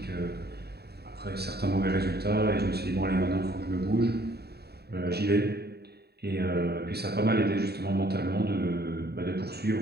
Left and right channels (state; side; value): late; left; 0.47 ms